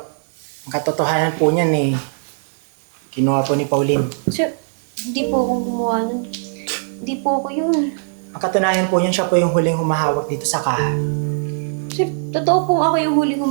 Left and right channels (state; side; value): silent; left; digital silence